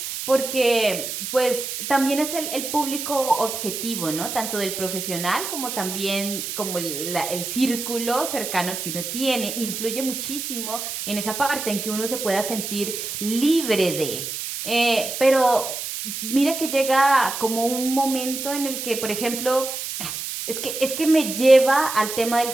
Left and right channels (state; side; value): noise; right; hiss, 5 dB below the sound